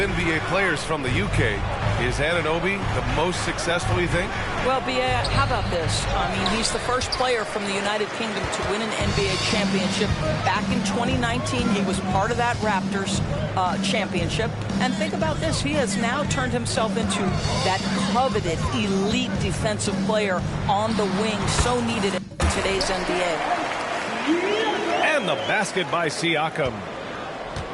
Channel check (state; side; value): identical; both; correlation 1.00